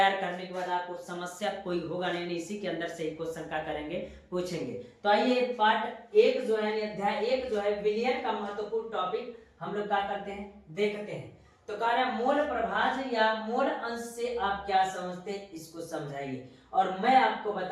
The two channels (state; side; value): identical; both; correlation 1.00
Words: करने के बाद आपको समस्या कोई होगा नहीं, इसी के अंदर से ही क्वेश्चन क्या करेंगे, पूछेंगे। तो आइए पार्ट 1 जो है, अध्याय 1 जो है विलयन का महत्वपूर्ण टॉपिक हम लोग क्या करते हैं, देखते हैं। तो कह रहा है मोल प्रभाज या मोल अंश से आप क्या समझते हैं, इसको समझाइए। और मैं आपको